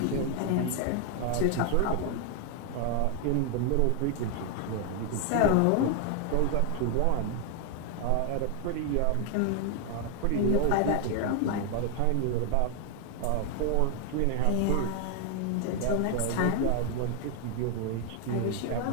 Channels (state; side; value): different; both; correlation 0.00